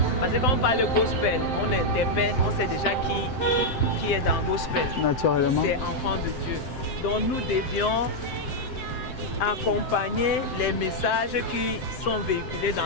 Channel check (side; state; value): right; late; 7.7 ms